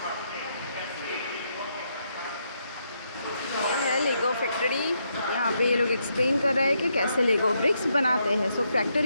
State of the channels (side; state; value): both; inverted; correlation -0.78